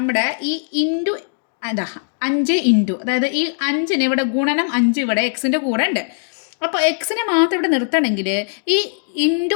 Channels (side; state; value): right; silent; digital silence